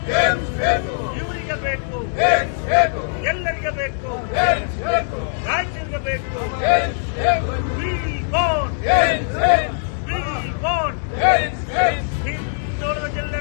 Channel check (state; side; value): silent; right; digital silence